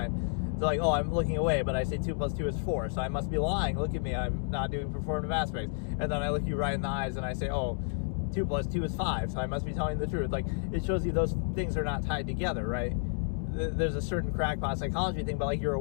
It's like, oh, I'm looking away, but I say 2 + 2 is 4, so I must be lying. Look at me, I'm not doing performative aspects. And then I look you right in the eyes and I say, oh, 2 + 2 is 5, so I must be telling the truth. Like, it shows you those things are not tied together, right? there's a certain crackpot psychology thing, but like you're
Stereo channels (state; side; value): silent; right; digital silence